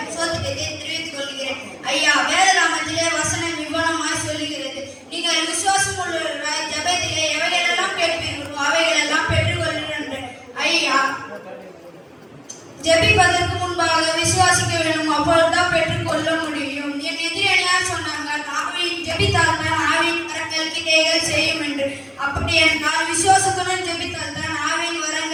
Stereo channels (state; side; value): identical; both; correlation 1.00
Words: சோத்தியத்தை தெரிவித்துக் கொள்கிறேன். ஐயா, வேதராமத்திலே வசனம் விவரமாய் சொல்லுகிறது, நீங்கள் விசுவாசம் உள்ளவர்களாய் ஜெபத்திலே எவைகளெல்லாம் கேட்பீர்களோ அவைகளெல்லாம் பெற்றுக்கொள்கிறேன். ஐயா, ஜெபிப்பதற்கு முன்பாக விசுவாசிக்க வேண்டும், அப்பொழுதுதான் பெற்றுக்கொள்ள முடியும். என் எதிரணியார் சொன்னாங்க, ஆவியின் ஜெபித்தால் தான் ஆவியின் வரங்கள் கிரியைகள் செய்யும் என்று. அப்படி என்றால் விசுவாசத்துடன் ஜெபித்தால் தான் ஆவியின்